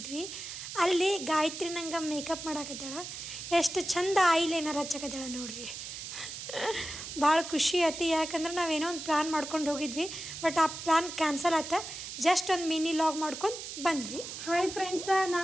ಅಲ್ಲಿ ಗಾಯತ್ರಿ ನಂಗೆ ಮೇಕಪ್ ಮಾಡಾಕತ್ತಾಳ. ಎಷ್ಟು ಚಂದ ಐಲೈನರ್ ಹಚ್ಚಕತ್ತಾಳ ನೋಡ್ರಿ. ಭಾಳ ಖುಷಿ ಆಯ್ತು, ಯಾಕಂದ್ರೆ ನಾವೇನೋ ಒಂದು ಪ್ಲ್ಯಾನ್ ಮಾಡ್ಕೊಂಡು ಹೋಗಿದ್ವಿ, ಬಟ್ ಆ ಪ್ಲ್ಯಾನ್ ಕ್ಯಾನ್ಸಲ್ ಆಯ್ತು. ಜಸ್ಟ್ ಒಂದು ಮಿನಿ ಲಾಗ್ ಮಾಡ್ಕೊಂಡು ಬಂದ್ವಿ. ಹಾಯ್ ಫ್ರೆಂಡ್ಸ,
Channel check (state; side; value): noise; right; hiss, 9 dB below the sound